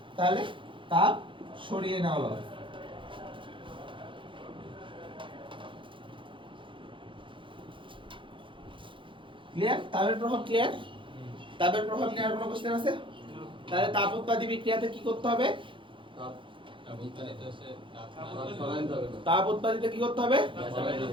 তাহলে তাপ সরিয়ে নেওয়া লস। ক্লিয়ার? তাপের প্রভাব ক্লিয়ার? তাপের প্রভাব নিয়ে আর কোনো কোশ্চেন আছে? তাহলে তাপ উৎপাদী বিক্রিয়াতে কি করতে হবে? তাপ উৎপাদিতে কি করতে হবে?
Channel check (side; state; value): left; late; 0.25 ms